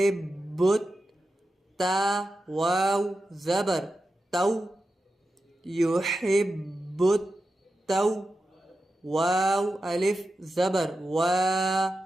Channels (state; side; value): normal; both; correlation 0.91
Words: تا واو زبر تو يحب التو واو ألف زبر وا